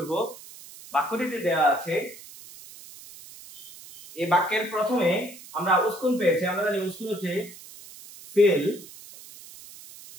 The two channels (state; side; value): noise; right; hiss, 18 dB below the sound